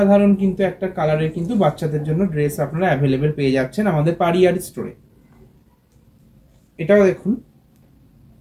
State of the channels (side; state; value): both; identical; correlation 1.00